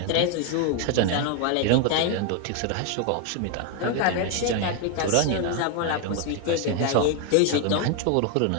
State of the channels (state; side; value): different; both; correlation 0.01